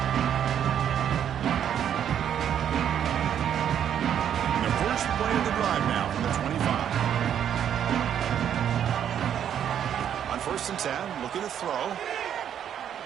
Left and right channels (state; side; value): quieter; left; 9.4 dB